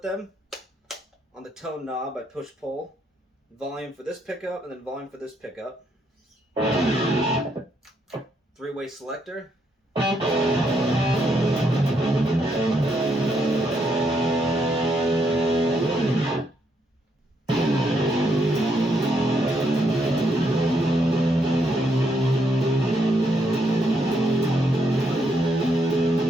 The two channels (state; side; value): normal; both; correlation 0.75